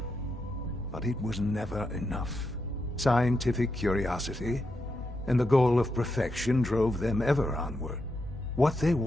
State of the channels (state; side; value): normal; both; correlation 0.84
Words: But it was never enough. Scientific curiosity and the goal of perfection drove them ever onward. What they